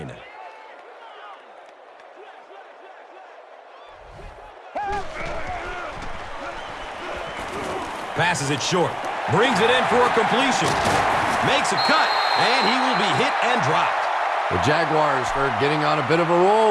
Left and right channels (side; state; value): both; identical; correlation 1.00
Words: Passes it short. Brings it in for a completion. Makes a cut, and he will be hit and dropped. The Jaguars are getting on a bit of a